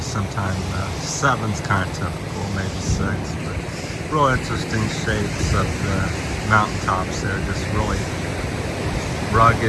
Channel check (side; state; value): both; identical; correlation 1.00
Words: sometime 7's kind of typical, maybe 6. But real interesting shapes of the mountaintops there, just really